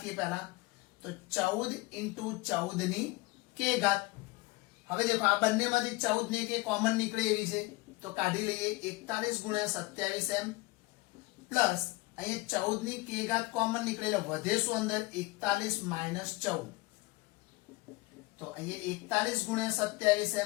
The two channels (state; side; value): quieter; right; 22.9 dB